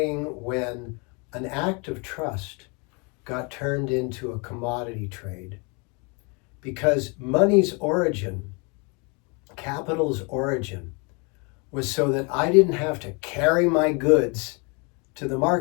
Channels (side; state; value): right; quieter; 31.9 dB